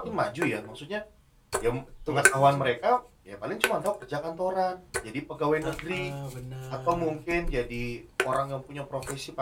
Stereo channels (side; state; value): both; identical; correlation 1.00